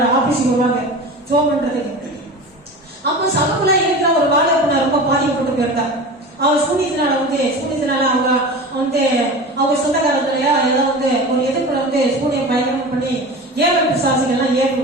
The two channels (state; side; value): normal; both; correlation 0.32